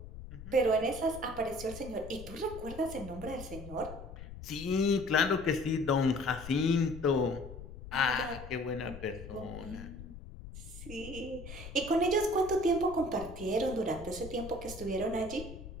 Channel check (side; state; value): left; noise; rumble, 13 dB below the sound